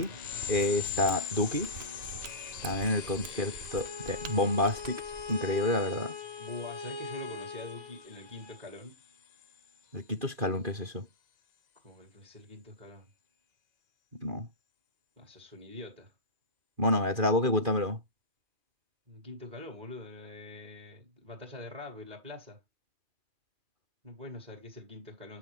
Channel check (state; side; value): late; left; 2.4 ms